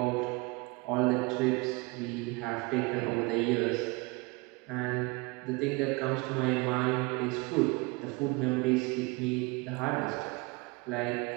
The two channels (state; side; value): quieter; left; 26.4 dB